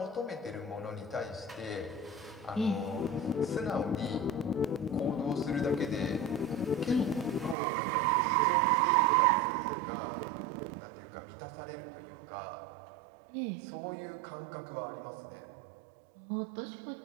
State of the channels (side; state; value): left; drops out; at 7.6 s